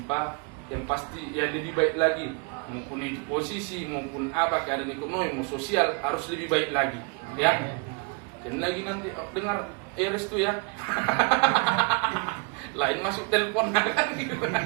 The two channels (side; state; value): left; quieter; 32.1 dB